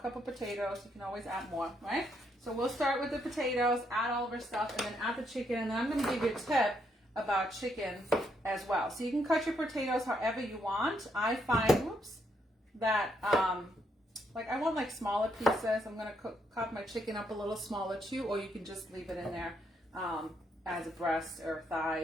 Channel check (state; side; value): normal; both; correlation 0.75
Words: potatoes. You can always add more, right? So we'll start with the potatoes, add all of our stuff, and then add the chicken. And then I'm going to give you a tip about chicken as well. So you can cut your potatoes however you want. I find, that I want smaller pieces. I'm going to cut my chicken up a little smaller too, or you can just leave it in there as a breast or